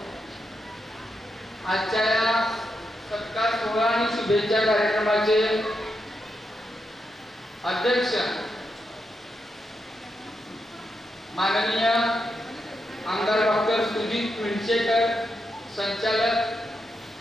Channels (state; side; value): normal; both; correlation 0.84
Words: आजच्या या सत्कार सोहळा आणि शुभेच्छा कार्यक्रमाचे अध्यक्ष माननीय आमदार डॉक्टर सुजित मिरचेकर, संचालक